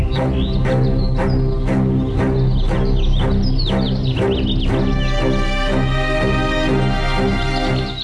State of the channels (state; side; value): identical; both; correlation 1.00